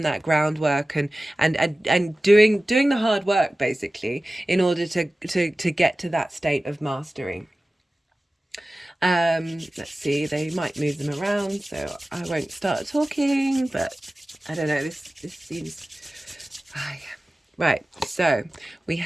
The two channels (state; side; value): normal; both; correlation 0.96